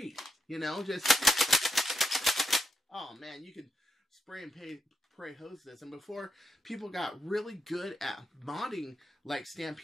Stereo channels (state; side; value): normal; both; correlation 0.84